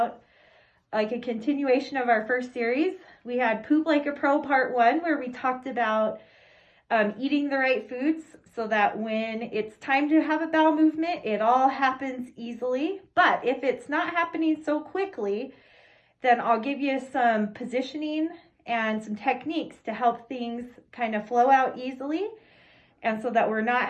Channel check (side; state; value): both; identical; correlation 1.00